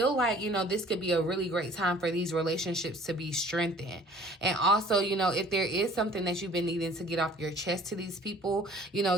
like, you know, this could be a really great time for these relationships to be strengthened. And also, you know, if there is something that you've been needing to get off your chest to these people, you know,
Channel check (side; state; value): both; normal; correlation 0.51